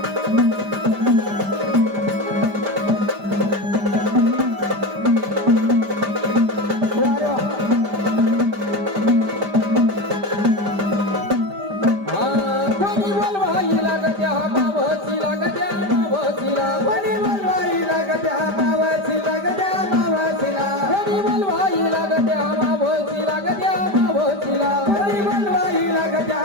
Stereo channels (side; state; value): left; late; 5.0 ms